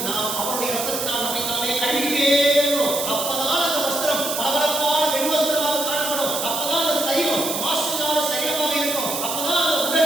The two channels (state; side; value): noise; right; hiss, 3 dB below the sound